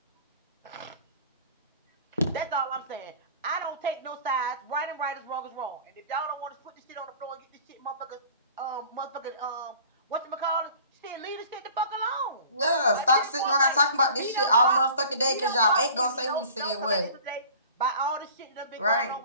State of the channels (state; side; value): inverted; both; correlation -0.45